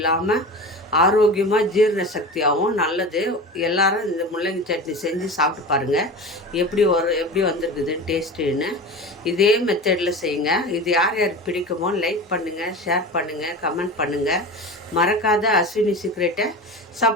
ஆரோக்கியமாக ஜீரண சக்தியாகவும் நல்லது. எல்லாரும் இந்த முள்ளங்கி சட்னி செஞ்சு சாப்பிட்டு பாருங்கள் எப்படி வந்திருக்குதுன்னு டேஸ்ட்டுன்னு. இதே மெத்தடில் செய்யுங்க. இது யார் யாருக்கு பிடிக்குமோ லைக் பண்ணுங்கள், ஷேர் பண்ணுங்கள், கமெண்ட் பண்ணுங்கள். மறக்காத அஸ்வினி சீக்ரெட்டை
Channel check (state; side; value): normal; both; correlation 0.30